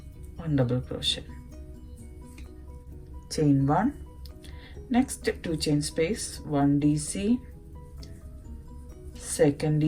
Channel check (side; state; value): both; identical; correlation 1.00